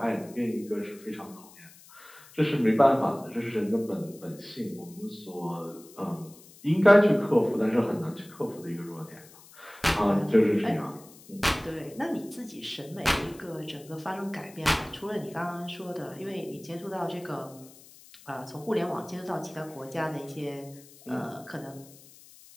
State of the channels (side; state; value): left; noise; hiss, 22 dB below the sound